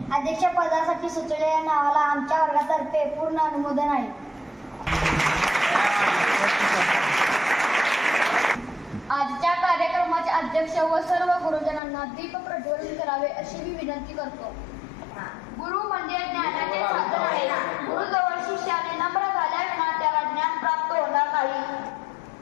अध्यक्षपदासाठी सुचवलेल्या नावाला आमच्या वर्गातर्फे पूर्ण अनुमोदन आहे. आजच्या कार्यक्रमाचे अध्यक्ष व सर्व गुरुजनांना दीप प्रज्वलन करावे अशी मी विनंती करतो. गुरु म्हणजे ज्ञानाचे साधन आहे. गुरुजवळ शिष्याने नम्र झाल्याविना त्याला ज्ञान प्राप्त होणार नाही.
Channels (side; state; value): right; drops out; at 11.8 s